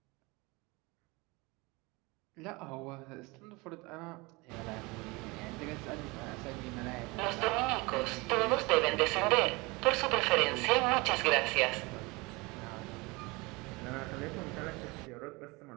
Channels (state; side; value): quieter; left; 24.9 dB